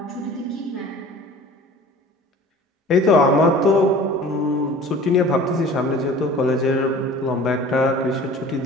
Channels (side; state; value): both; normal; correlation 0.44